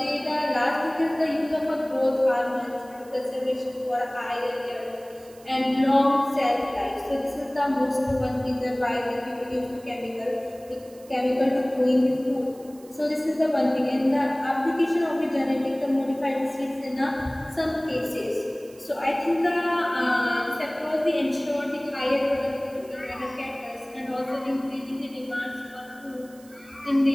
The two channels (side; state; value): right; noise; hiss, 25 dB below the sound